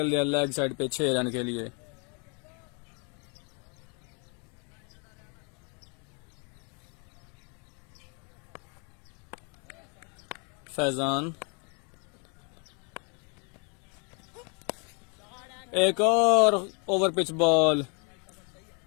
दिया लेग साइड पे 6 रन के लिए। फैजान एक और ओवर पिच बॉल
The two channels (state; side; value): quieter; right; 35.8 dB